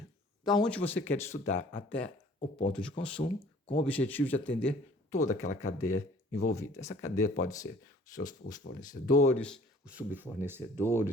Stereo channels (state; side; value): normal; both; correlation 0.52